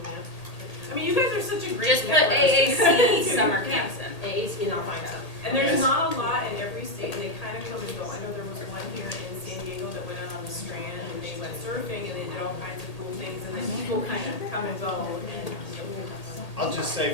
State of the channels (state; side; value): late; right; 1.8 ms